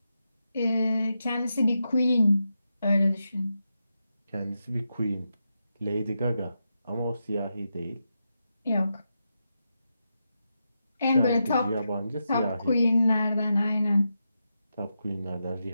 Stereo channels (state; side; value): inverted; both; correlation -0.87